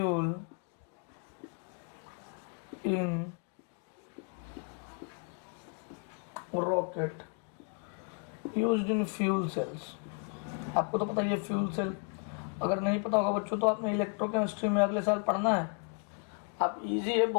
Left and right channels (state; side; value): quieter; right; 39.2 dB